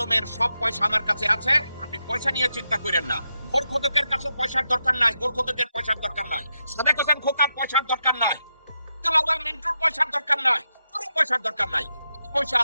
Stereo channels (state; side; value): inverted; both; correlation -0.85